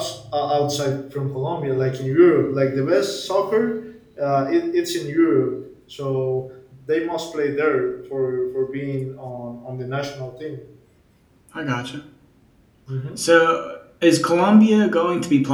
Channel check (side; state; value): both; identical; correlation 1.00